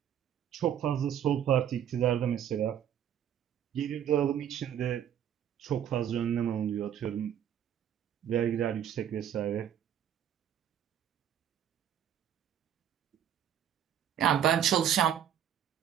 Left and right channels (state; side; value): quieter; left; 9.7 dB